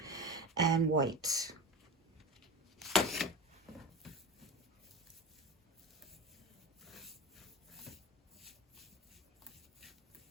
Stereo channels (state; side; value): normal; both; correlation 0.27